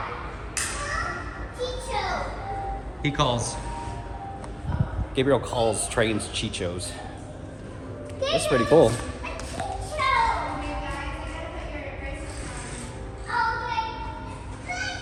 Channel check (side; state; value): both; identical; correlation 1.00